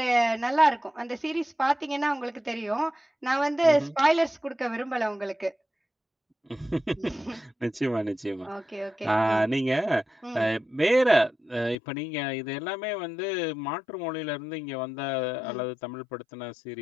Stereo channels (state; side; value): drops out; right; at 11.8 s